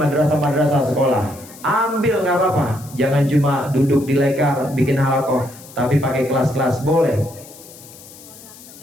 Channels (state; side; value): noise; left; hiss, 19 dB below the sound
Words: sekolah, ambil, nggak apa-apa. Jangan cuma duduk di lekar bikin halaqah, tapi pakai kelas-kelas, boleh.